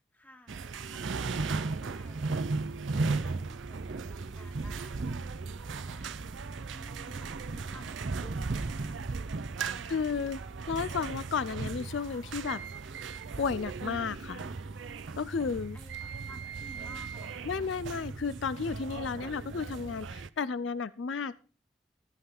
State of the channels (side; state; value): both; normal; correlation 0.42